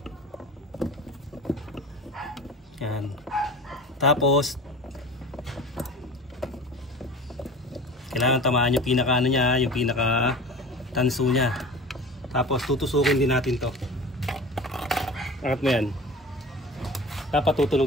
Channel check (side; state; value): both; normal; correlation 0.36